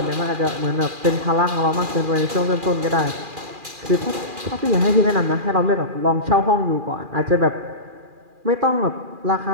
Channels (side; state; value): left; late; 2.4 ms